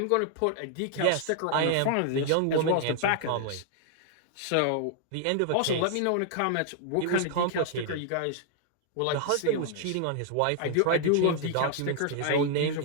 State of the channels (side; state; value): both; different; correlation 0.00